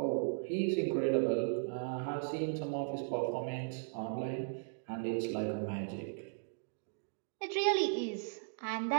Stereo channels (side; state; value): left; silent; digital silence